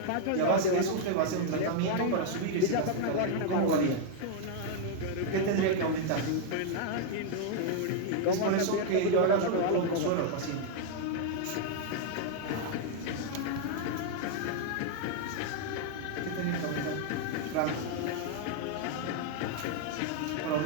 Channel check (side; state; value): both; different; correlation 0.00